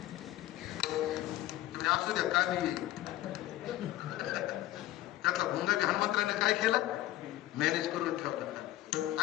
असू द्या का नाही त्यातला भुंगा हनुमंतराने काय केला? मॅनेज करून ठेवला.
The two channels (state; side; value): quieter; right; 15.2 dB